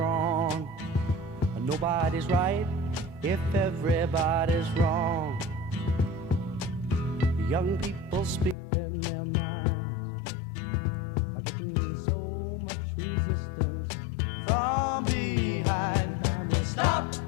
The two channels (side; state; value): right; drops out; at 8.6 s